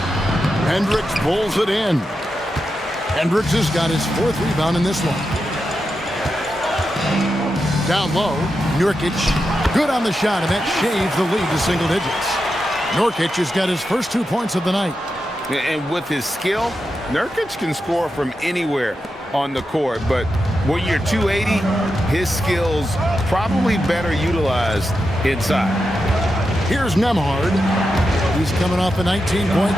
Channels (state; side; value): normal; both; correlation 0.88